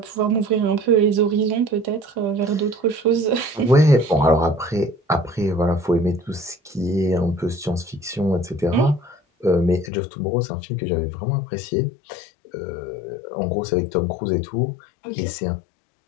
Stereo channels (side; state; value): right; drops out; at 9.9 s